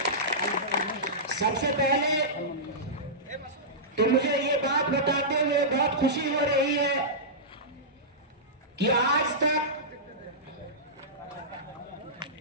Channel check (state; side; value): normal; both; correlation -0.16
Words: सबसे पहले तो मुझे ये बात बताते हुए बहुत खुशी हो रही है कि आज तक